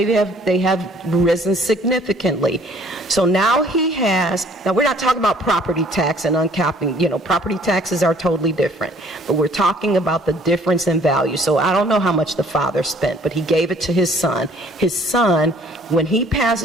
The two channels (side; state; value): both; normal; correlation 0.57